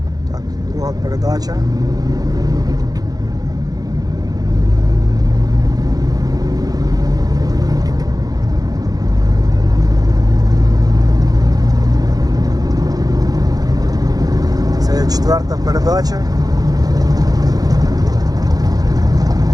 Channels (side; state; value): left; late; 0.18 ms